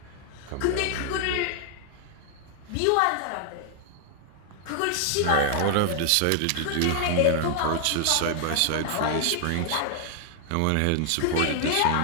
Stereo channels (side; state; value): both; different; correlation 0.00